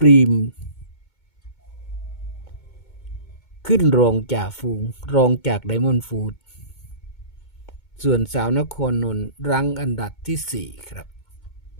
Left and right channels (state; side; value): late; right; 2.2 ms